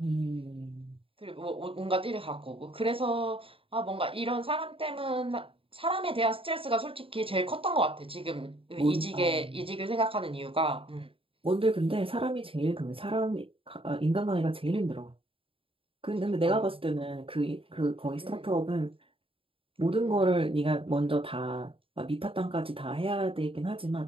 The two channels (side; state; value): left; late; 0.26 ms